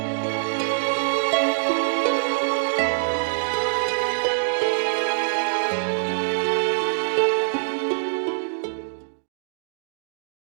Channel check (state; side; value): silent; left; digital silence